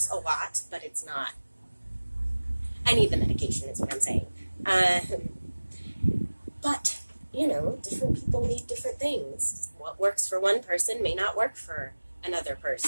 a lot, but it's not. I need the medication is what I'm saying. But, different people need different things. What works for one person may not work for another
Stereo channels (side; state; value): both; inverted; correlation -1.00